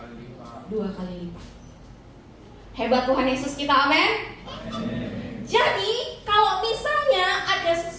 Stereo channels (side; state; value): both; identical; correlation 1.00